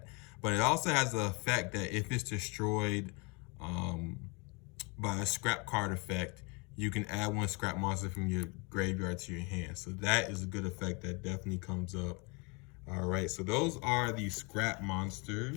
but it also has the effect that if it's destroyed by a scrap card effect, you can add 1 scrap monster from your graveyard to your hand. So that is a good effect that definitely comes up. All right, so those are the scrap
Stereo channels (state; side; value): quieter; right; 30.3 dB